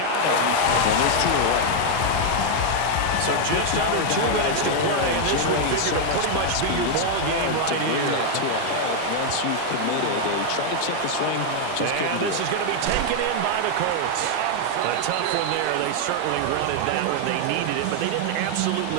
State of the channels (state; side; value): different; both; correlation 0.00